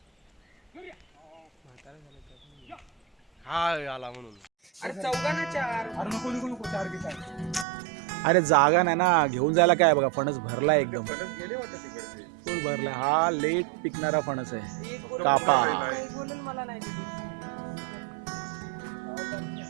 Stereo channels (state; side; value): drops out; left; at 7.7 s